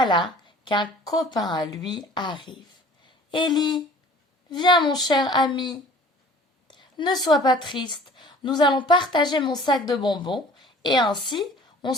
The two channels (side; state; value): both; normal; correlation 0.48